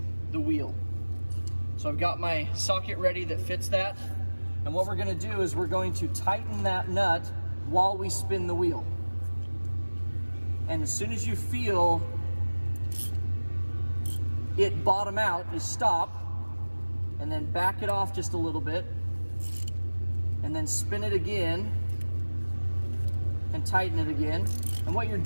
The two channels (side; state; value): both; inverted; correlation -1.00